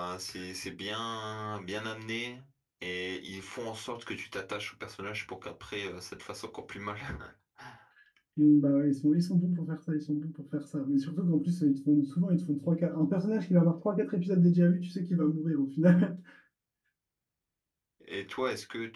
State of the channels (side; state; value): both; identical; correlation 1.00